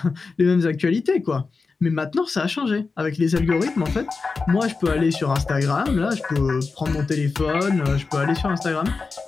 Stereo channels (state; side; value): quieter; right; 4.3 dB